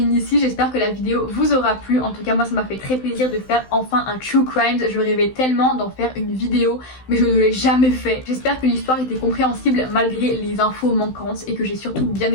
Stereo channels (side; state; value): right; late; 16 ms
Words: ici, j'espère que la vidéo vous aura plu. En tout cas, moi ça m'a fait très plaisir de faire enfin un True Crimes. Je rêvais tellement d'en faire une vidéo, mais je ne l'ai jamais fait. J'espère que l'histoire était compréhensible malgré les infos manquantes et que j'ai surtout bien